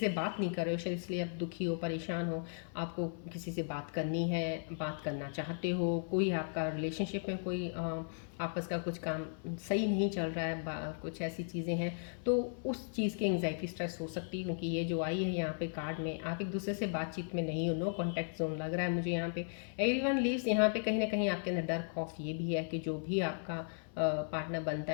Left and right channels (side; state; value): right; silent; 54 dB below the other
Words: बात नहीं कर रहे हो शायद, इसलिए आप दुखी हो, परेशान हो। आपको किसी से बात करनी है, बात करना चाहते हो, कोई आपका रिलेशनशिप में कोई आपस का कुछ काम सही नहीं चल रहा है, कुछ ऐसी चीज़ें हैं, तो उस चीज़ की एंग्जाइटी, स्ट्रेस हो सकती है। क्योंकि ये जो आई है यहाँ पे कार्ड में, आप एक दूसरे से बातचीत में नहीं हो, नो कॉन्टैक्ट जोन लग रहा है मुझे यहाँ पे। एवरीवन लीव्स, यहाँ पे कहीं ना कहीं आपके अंदर डर, खौफ ये भी है कि जो भी आपका पार्टनर बनता